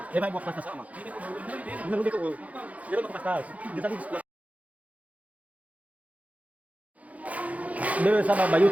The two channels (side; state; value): left; late; 0.069 ms